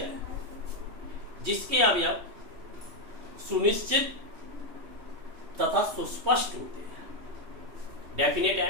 जिसके अवयव सुनिश्चित तथा सुस्पष्ट होते हैं, डेफिनेट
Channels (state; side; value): late; left; 3.2 ms